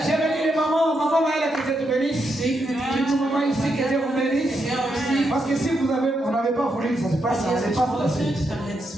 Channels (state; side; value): normal; both; correlation 0.82